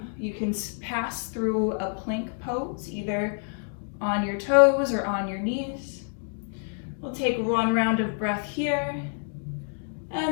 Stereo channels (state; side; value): silent; right; 60 dB below the other